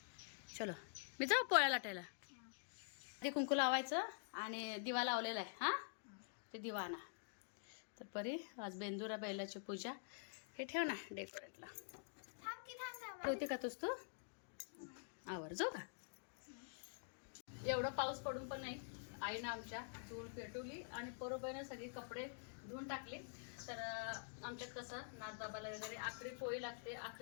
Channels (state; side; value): silent; right; digital silence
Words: चलो मी जाऊ पोळ्या लाटायला. ते कुंकू लावायचं आणि दिवा लावलेला आहे. हा ते दिवा आणा. तर परी आज बेंदुरा बैलाची पूजा. हे ठेव ना डेकोरेटला. ठेवते का तूच तू? आवर जाऊ का? एवढं पाऊस पडून पण नाही आईनं आमच्या चूल पेटवली आणि बरोबर सगळे कपडे धुवून टाकले. तर आमच्यात कसं नाथबाबाला वगैरे आखरी पोळी लागते.